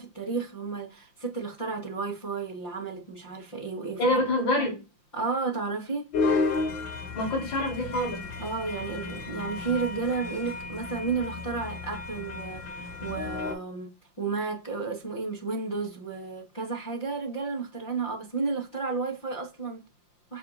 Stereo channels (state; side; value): late; right; 5.8 ms